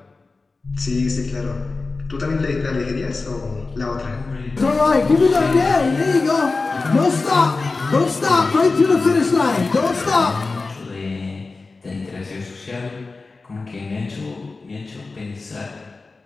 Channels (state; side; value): quieter; right; 3.8 dB